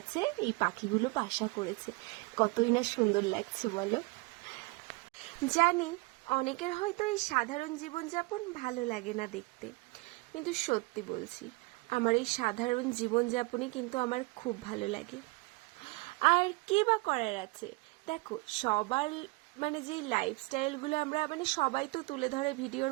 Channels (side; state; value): left; quieter; 26.4 dB